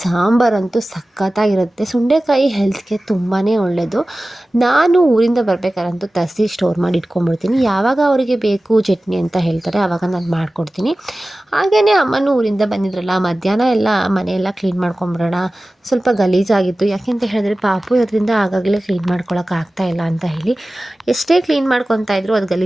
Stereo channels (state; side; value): normal; both; correlation 0.97